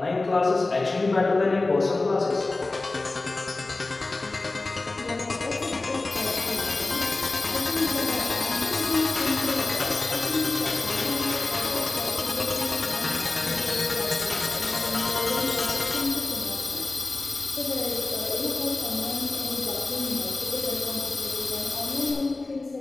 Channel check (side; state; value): right; quieter; 3.3 dB